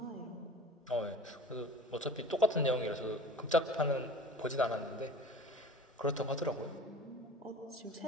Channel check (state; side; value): normal; both; correlation 0.41